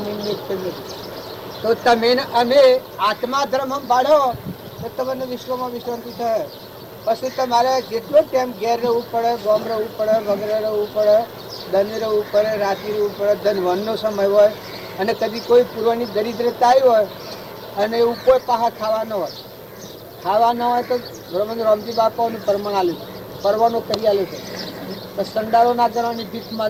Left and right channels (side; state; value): both; identical; correlation 1.00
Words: એક નથી. તો તમે અમે આત્મા ધર્મ પાડો તો તમને વિશ્વમાં વિશ્રાંતિ થાય. પછી તમારે જેટલો ટાઈમ ઘેર રહેવું પડે, ગામ રહેવું પડે, વગેરે રહેવું પડે, ધન રહેવું પડે, રાત્રિ રહેવું પડે, ધનવનનો સમય હોય અને કદી કોઈ પૂર્વની દરિદ્રતા આવી હોય અને એવું કોઈ પાહા ખાવા ન હોય તો બરોબર રામજી બાપાઓનું પરમણ આલ્યું પરવાનો કરી આલ્યો છે. તો સંડારો ના કરવાની ભીખ